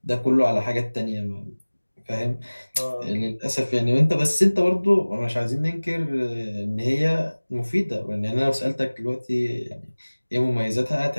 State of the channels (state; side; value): inverted; both; correlation -1.00